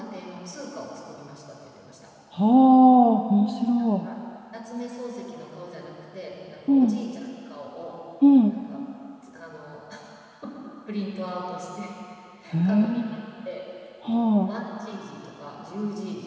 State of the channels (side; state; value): both; identical; correlation 1.00